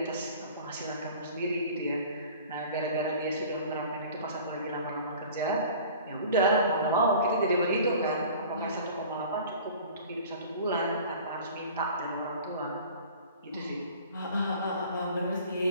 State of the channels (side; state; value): both; inverted; correlation -0.44